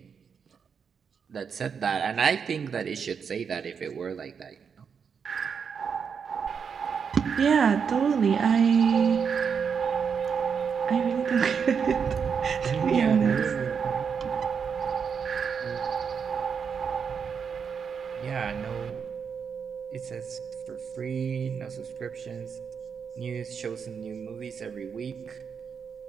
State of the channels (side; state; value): left; quieter; 6.5 dB